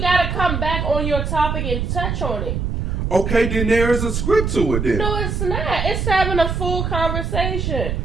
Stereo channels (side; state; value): right; noise; rumble, 1 dB below the sound